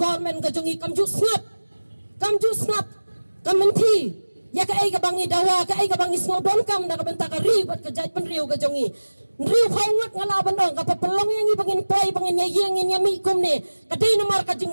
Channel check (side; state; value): both; inverted; correlation -1.00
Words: ka jongi kam ju snap kam menti ya ka ai ka bangi dawa ka ai ka bangi small don kam da ka benta ka ribat ka jaj penriu ka jongi. Riu khawat ngalaban dong ka papelong yang bangin poi bangin yang yami kum ne ka dei namar ka